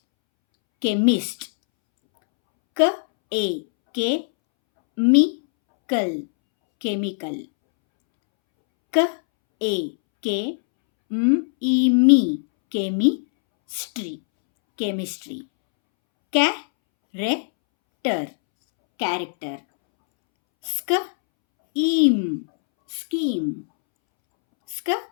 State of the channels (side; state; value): right; silent; 65 dB below the other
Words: chemist. K, A, K, chemical, chemical. K, A, K, E, me, chemistry, chemistry. Character, character. Scheme, scheme.